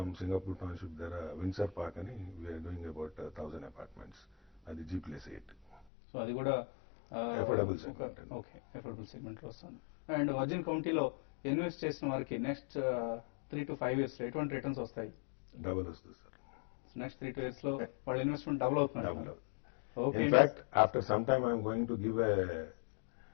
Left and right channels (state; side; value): drops out; right; at 5.9 s